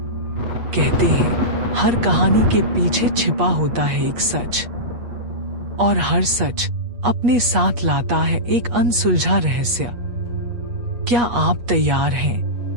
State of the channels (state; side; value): late; left; 8.4 ms